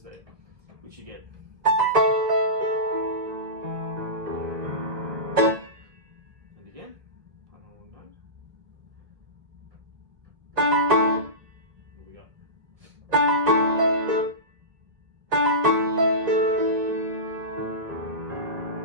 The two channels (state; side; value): late; left; 1.5 ms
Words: there, which you get. And again, one whole note. What we got?